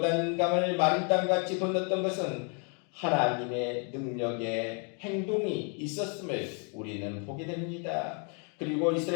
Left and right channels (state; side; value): quieter; right; 39.1 dB